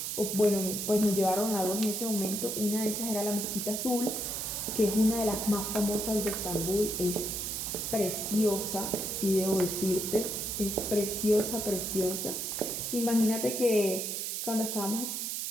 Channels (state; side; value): noise; right; hiss, 3 dB below the sound